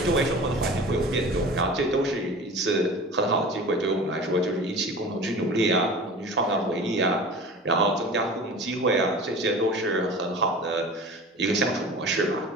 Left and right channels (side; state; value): both; normal; correlation 0.38